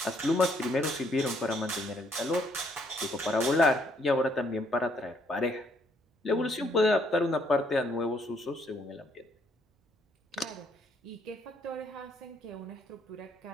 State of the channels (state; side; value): normal; both; correlation 0.69